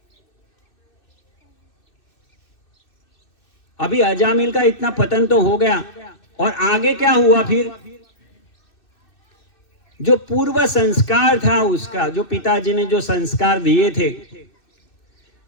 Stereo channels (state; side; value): late; right; 2.6 ms